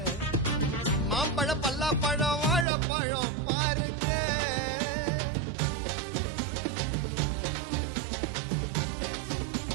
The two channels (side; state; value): left; drops out; at 2.7 s